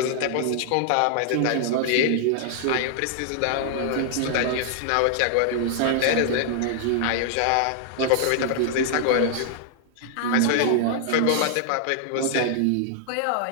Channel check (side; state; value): both; different; correlation -0.01